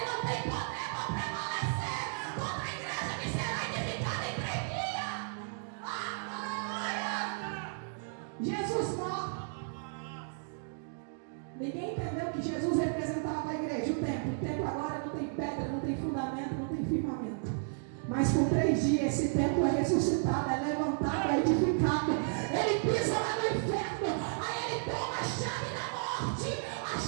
não têm poder para prevalecer contra a igreja que será edificada em 3 dias. Jesus morre. Ninguém entendeu que Jesus representava a igreja, o templo. O templo agora não tem pedra, não tem fundamento, não tem firmamento. Mas por 3 dias esse templo é ressuscitado, é levantado, é edificado. Ele pisa lá no inferno, aí ele toma a chave da morte, a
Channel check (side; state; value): left; silent; digital silence